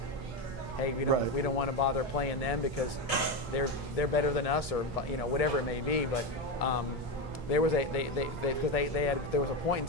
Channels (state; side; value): normal; both; correlation 0.14